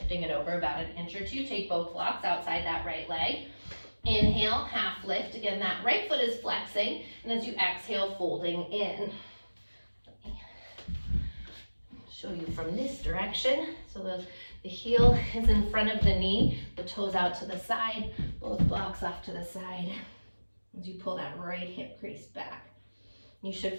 it over about an inch or two. Take both blocks outside that right leg. Inhale, half lift. Again, that right foot is flexing. And as you exhale, folding in. Show you from this direction. So the heel is in front of the knee. The toes out to the side. Both blocks off to the side. As you pull that right hip crease back. You should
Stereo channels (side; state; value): both; inverted; correlation -1.00